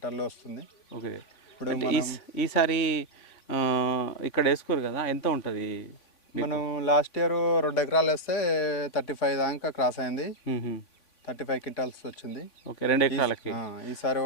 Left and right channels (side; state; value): right; late; 3.5 ms